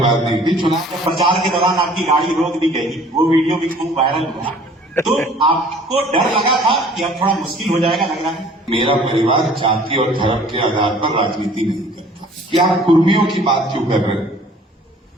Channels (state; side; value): normal; both; correlation 0.52